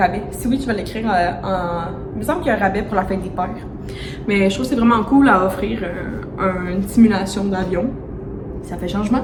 Si oui, je vais l'écrire Il me semble qu'il y a un rabais pour la fête des pères. Mais je trouve que c'est vraiment cool à offrir une simulation d'avion. Ça fait changement.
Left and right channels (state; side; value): identical; both; correlation 1.00